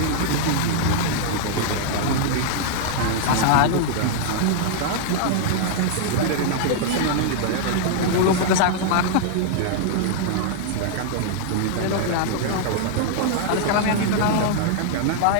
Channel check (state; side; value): different; both; correlation -0.01